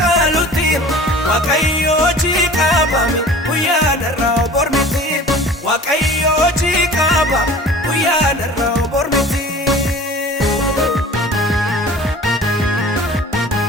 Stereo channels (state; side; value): normal; both; correlation 0.43